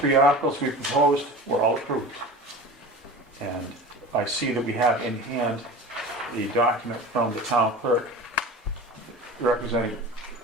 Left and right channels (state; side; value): normal; both; correlation 0.35